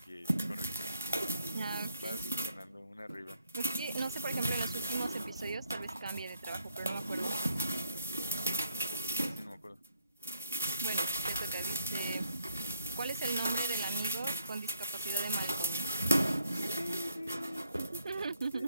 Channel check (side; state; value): both; inverted; correlation -0.73